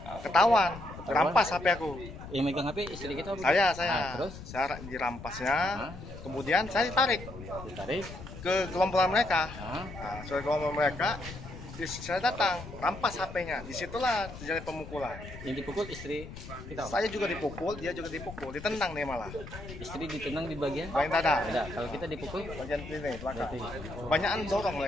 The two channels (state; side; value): noise; left; rumble, 13 dB below the sound